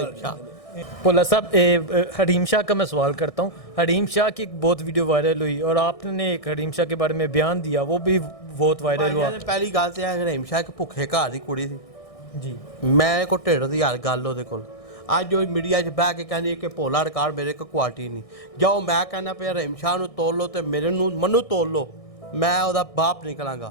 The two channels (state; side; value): late; right; 1.6 ms